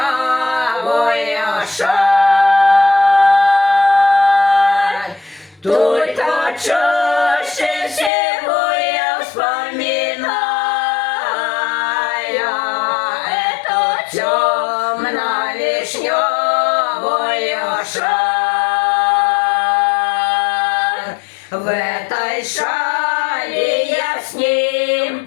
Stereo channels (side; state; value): right; drops out; at 8.1 s